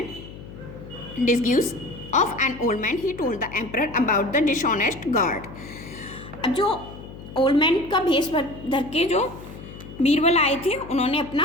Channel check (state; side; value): noise; left; hum, 14 dB below the sound